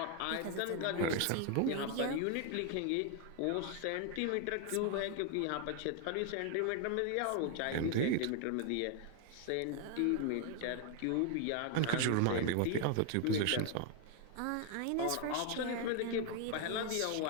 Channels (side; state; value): both; different; correlation 0.00